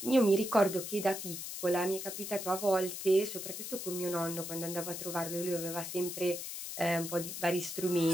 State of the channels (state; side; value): noise; left; hiss, 7 dB below the sound